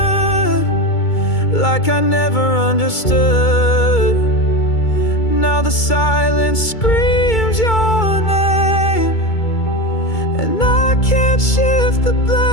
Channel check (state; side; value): late; right; 2.3 ms